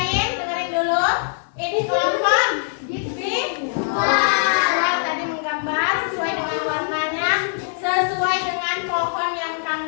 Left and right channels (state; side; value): silent; right; 59 dB below the other